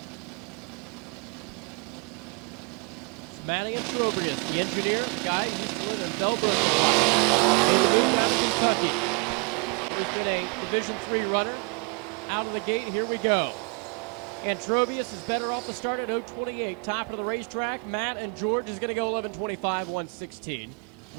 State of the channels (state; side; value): quieter; left; 34.5 dB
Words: It's Matty and Trobrius, the engineer, the guy who's doing the Delbert. He's been a Division III runner. Out of the gate, here we go. And Trobrius is better off the start at 028. Top of the racetrack, Matt and George is going to go 1125, 116.